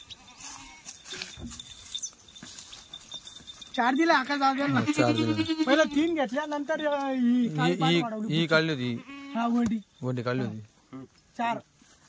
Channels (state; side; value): identical; both; correlation 1.00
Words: चार दिले आकाश दादा. 4 दिले. पहिला 3 घेतल्या नंतर ही काढली होती. हा वंडी काढली होती. 4